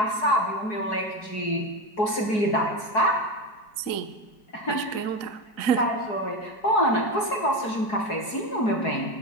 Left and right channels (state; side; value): late; right; 4.7 ms